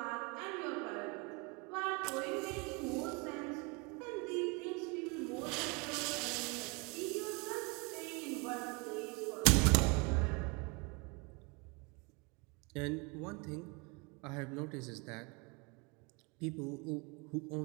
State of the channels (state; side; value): quieter; left; 30.1 dB